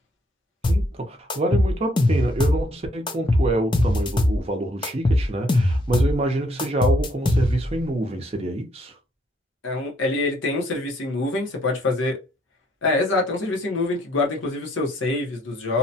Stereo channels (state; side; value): normal; both; correlation 0.68